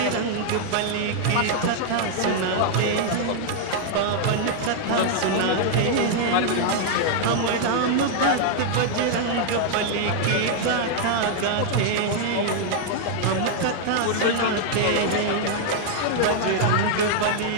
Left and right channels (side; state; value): both; different; correlation 0.00